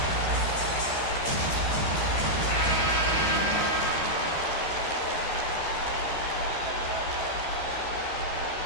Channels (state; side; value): late; right; 13 ms